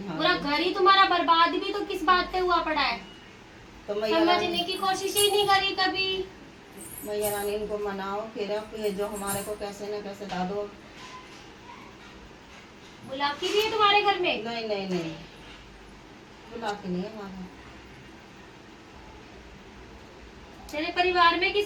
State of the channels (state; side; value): identical; both; correlation 1.00